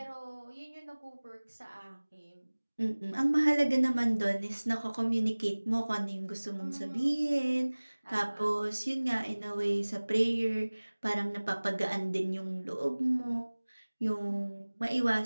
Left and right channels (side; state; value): both; inverted; correlation -1.00